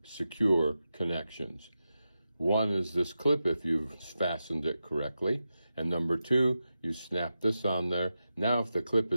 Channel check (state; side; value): inverted; both; correlation -0.90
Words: secure connections. One is this clip if you've fastened it correctly, and number 2, you snap this on there. Now if the clip